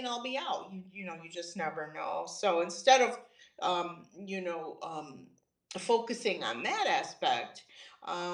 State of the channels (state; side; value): identical; both; correlation 1.00